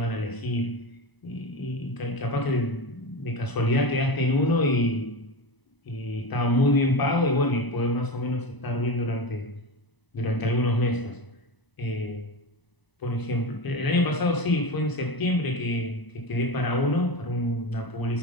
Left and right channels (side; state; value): right; late; 1.0 ms